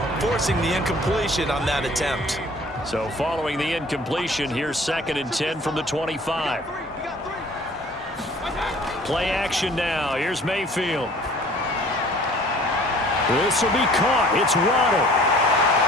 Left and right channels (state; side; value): normal; both; correlation 0.51